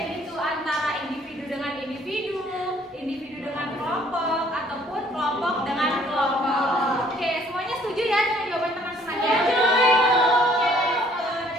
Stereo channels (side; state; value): both; normal; correlation 0.60